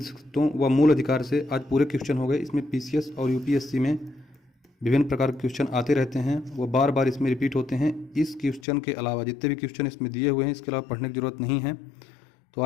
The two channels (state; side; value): drops out; right; at 8.7 s